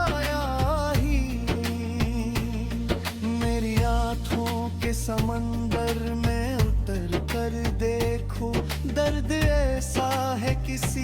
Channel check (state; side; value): identical; both; correlation 1.00